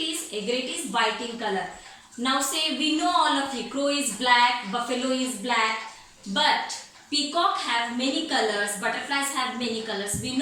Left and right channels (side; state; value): both; identical; correlation 1.00